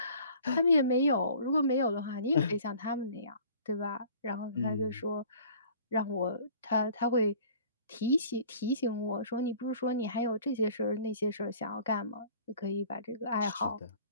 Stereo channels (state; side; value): inverted; both; correlation -0.50